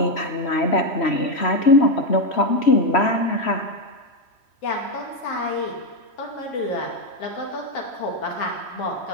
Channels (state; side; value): late; right; 3.1 ms